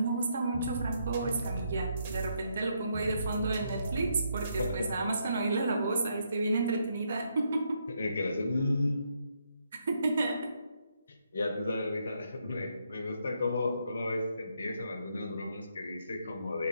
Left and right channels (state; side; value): inverted; both; correlation -0.76